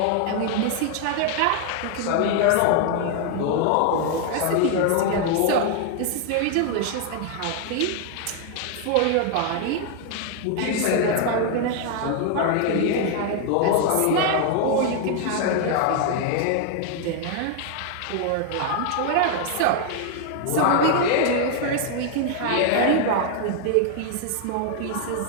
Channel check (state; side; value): different; both; correlation 0.00